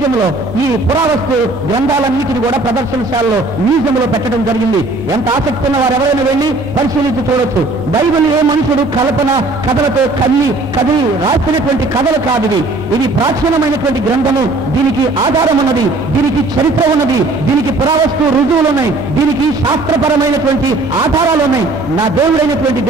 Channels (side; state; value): left; quieter; 3.0 dB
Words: ఈ పురావస్తు గ్రంథాలన్నిటిని కూడా ప్రదర్శనశాలలో మ్యూజియంలో పెట్టడం జరిగింది. ఎంత ఆసక్తి ఉన్న వారు ఎవరైనా వెళ్ళి పరిశీలించి చూడొచ్చు. బైబిల్ ఏ మనుషుడు కల్పన కథలతో కదిలి రాసినటువంటి కథలు కాదు. ఇది ప్రాచీనమైనటువంటి గ్రంథము. దీనికి ఆధారం ఉన్నది, దీనికి చరిత్ర ఉన్నది, దీనికి పురావస్తు రుజువులు ఉన్నాయి, దీనికి శాస్త్రపరమైనటువంటి ఆధారాలు ఉన్నాయి. నా దేవుడైనటువంటి